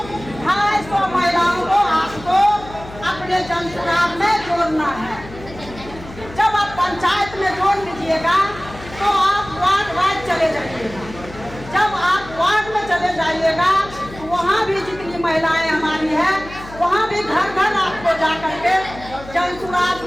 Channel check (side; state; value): left; noise; hum, 16 dB below the sound